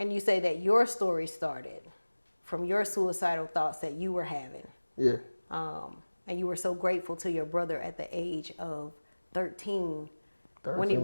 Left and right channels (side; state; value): both; inverted; correlation -1.00